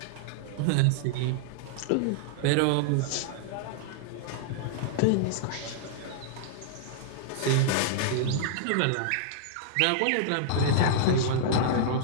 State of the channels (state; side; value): different; both; correlation -0.02